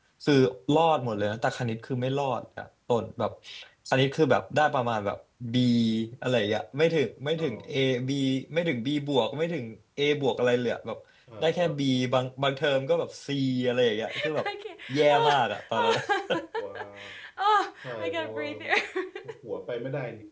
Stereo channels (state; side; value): identical; both; correlation 1.00